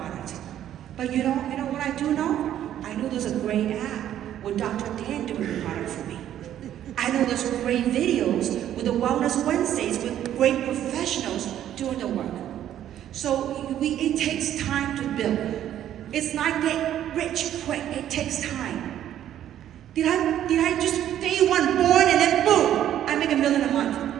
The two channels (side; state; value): left; quieter; 11.3 dB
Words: But you know what I do know? I know there's a great app with Dr. Dan doing the product for me. I know there's great videos with the Wellness Wednesdays with great professionals doing the work. So it takes time to build. It's not get rich quick. It takes time. Did I just day one born and then boom, I make $1 million a month?